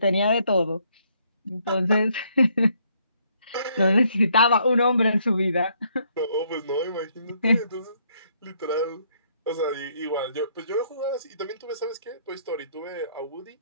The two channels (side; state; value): both; inverted; correlation -0.69